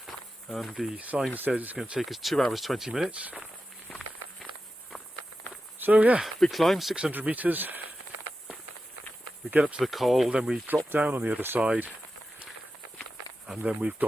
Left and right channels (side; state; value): both; normal; correlation 0.91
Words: and the sign says it's going to take us 2 hours 20 minutes. So yeah, big climb, 600 metres. We get up to the col, then we drop down on the other side, and then we've